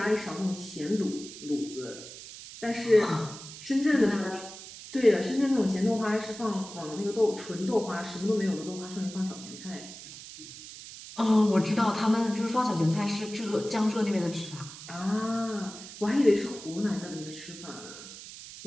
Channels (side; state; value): right; noise; hiss, 14 dB below the sound